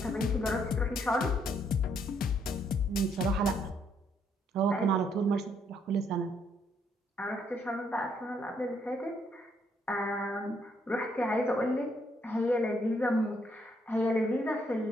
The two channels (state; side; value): normal; both; correlation 0.72